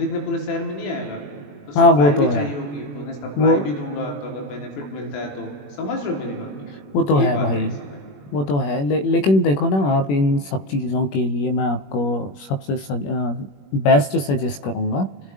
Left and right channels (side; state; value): right; late; 21 ms